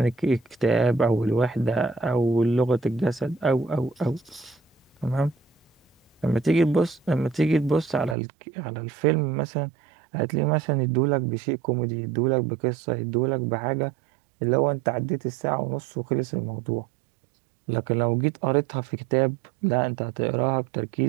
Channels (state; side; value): drops out; left; at 8.2 s